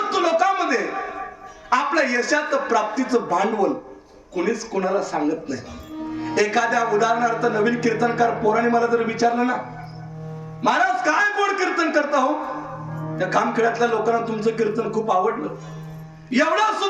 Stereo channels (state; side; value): identical; both; correlation 1.00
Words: लोकांमध्ये आपल्या यशाचं प्राप्तीचं भांडवल कुणीच कोणाला सांगत नाही. एखाद्या उदाहरणार्थ नवीन कीर्तनकार पोराने मला जर विचारलं ना, महाराज काय गोड कीर्तन करता हो, त्या खामखेड्यातल्या लोकांना तुमचं कीर्तन खूप आवडलं, एवढं